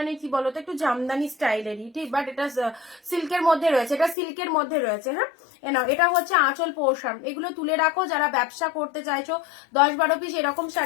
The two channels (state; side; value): drops out; right; at 4.2 s